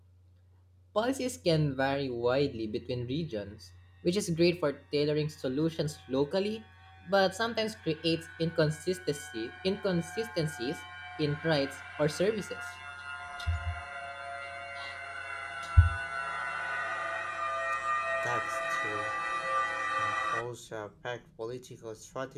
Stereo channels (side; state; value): both; identical; correlation 1.00